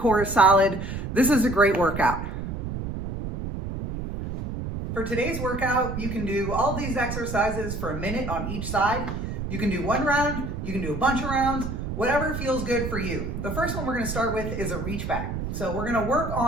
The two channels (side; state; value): right; noise; rumble, 5 dB below the sound